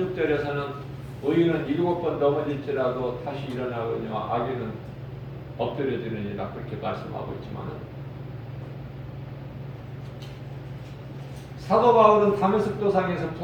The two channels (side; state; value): both; identical; correlation 1.00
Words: 의인은 7번 넘어질지라도 다시 일어나거니와 악인은 엎드려지느니라 그렇게 말씀하고 있지만 사도 바울은 다메섹 도상에서